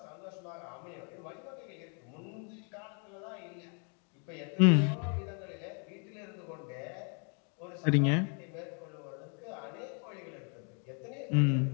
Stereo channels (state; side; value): quieter; right; 39.6 dB